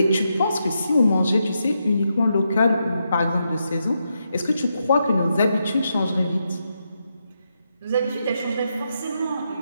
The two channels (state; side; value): inverted; both; correlation -0.83